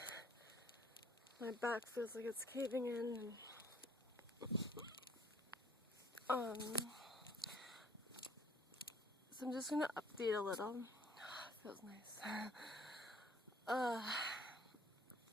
my back feels like it's caving in. And, so I'm just gonna update a little. Feels nice.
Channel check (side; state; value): both; normal; correlation 0.59